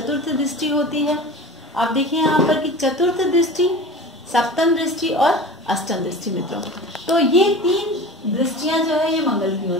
दृष्टि होती है। आप देखिए यहाँ पर कि चतुर्थ दृष्टि, सप्तम दृष्टि और अष्टम दृष्टि मित्रों। तो ये 3 दृष्टियां जो है ये मंगल की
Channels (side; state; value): both; normal; correlation 0.35